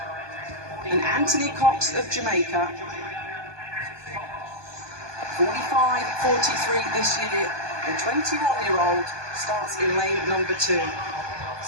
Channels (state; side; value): late; left; 1.2 ms